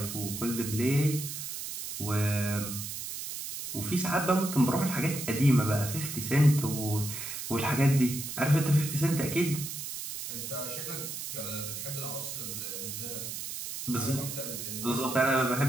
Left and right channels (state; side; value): noise; right; hiss, 7 dB below the sound